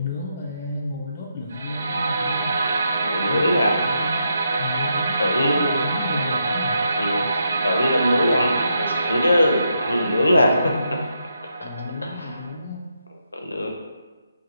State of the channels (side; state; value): both; inverted; correlation -0.81